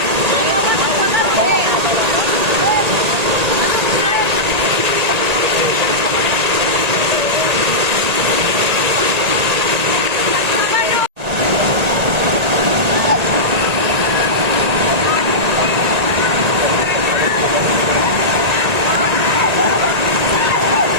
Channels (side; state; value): left; late; 1.8 ms